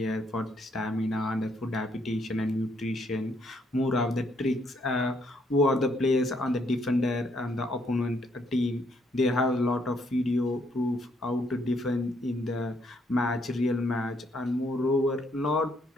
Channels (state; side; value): normal; both; correlation 0.71